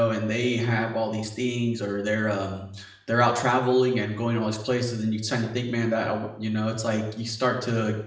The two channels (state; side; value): identical; both; correlation 1.00